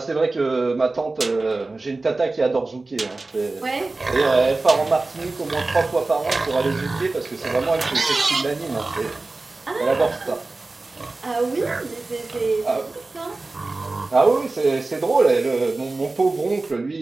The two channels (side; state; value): left; quieter; 3.3 dB